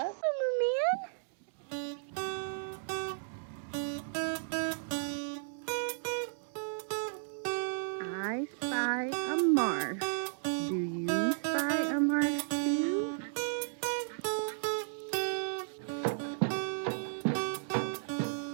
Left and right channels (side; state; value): left; silent; digital silence